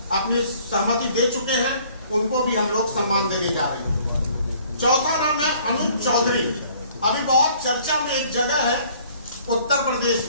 अपनी सहमति दे चुके हैं, उनको भी हम लोग सम्मान देने जा रहे हैं। चौथा नाम है अनुज चौधरी। अभी बहुत चर्चा में एक जगह है उत्तर प्रदेश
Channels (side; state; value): both; inverted; correlation -0.57